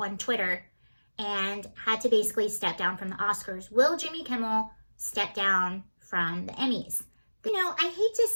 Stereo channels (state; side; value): inverted; both; correlation -1.00